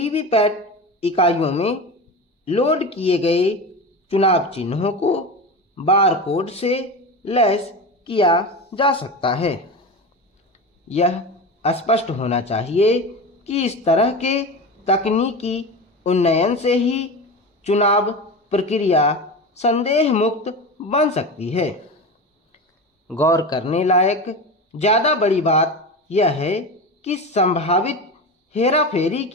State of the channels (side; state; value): both; normal; correlation 0.25